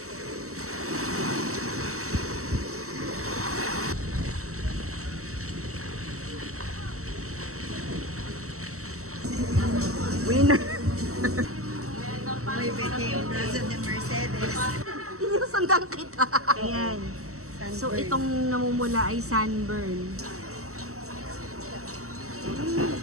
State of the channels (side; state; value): left; late; 0.64 ms